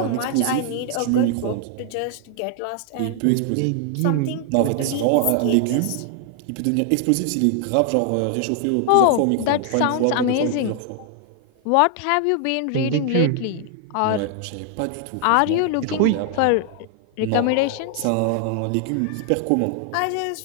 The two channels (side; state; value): both; different; correlation 0.00